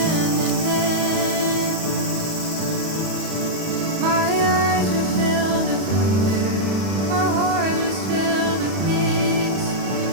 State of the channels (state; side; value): late; left; 31 ms